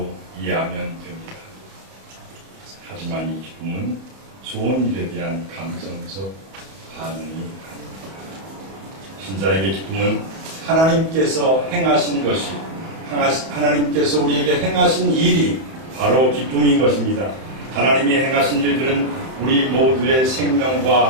이해하면 됩니다. 하지만 이 기쁨은 좋은 일에 대한 감정적 반응이 아닙니다. 신자에게 기쁨은 하나님께서 행하신 것이 하나님께서 우리에게 행하신 일이 바로 기쁨인 것입니다. 하나님이 행하신 일들은 우리 모두의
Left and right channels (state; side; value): late; left; 31 ms